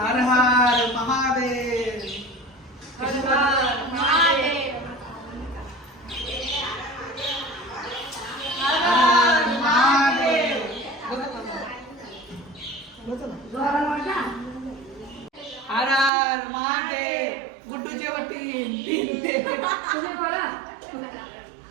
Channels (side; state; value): left; drops out; at 16.1 s